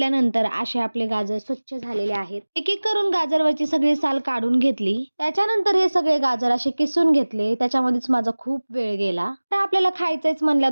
असे आपले गाजर स्वच्छ झालेले आहेत. एक एक करून गाजरवरची सगळी साल काढून घेतली. त्याच्यानंतर हे सगळे गाजर असे किसून घेतले. त्याच्यामध्येच माझा खूप वेळ गेला. तर आपल्याला खायचंच म्हणलं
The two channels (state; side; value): inverted; both; correlation -1.00